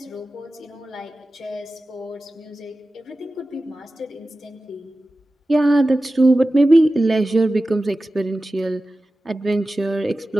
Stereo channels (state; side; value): normal; both; correlation 0.95